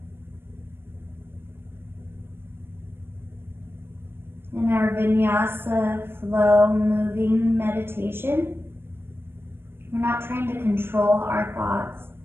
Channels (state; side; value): late; left; 0.11 ms